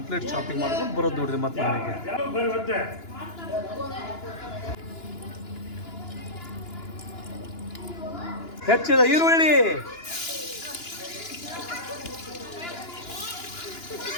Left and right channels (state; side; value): late; right; 2.9 ms